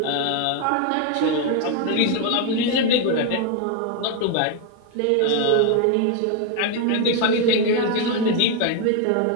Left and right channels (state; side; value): different; both; correlation 0.01